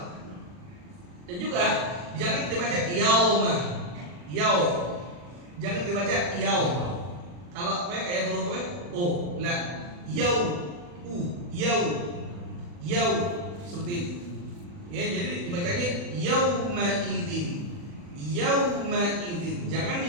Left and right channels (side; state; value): left; late; 40 ms